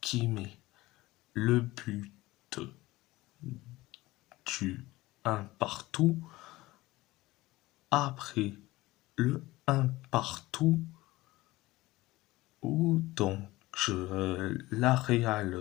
qui met le but du 1 partout. Après le 1 partout, où donc la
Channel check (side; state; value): right; quieter; 18.9 dB